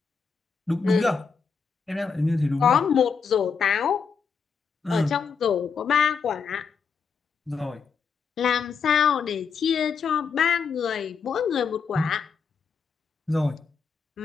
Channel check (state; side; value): quieter; right; 5.8 dB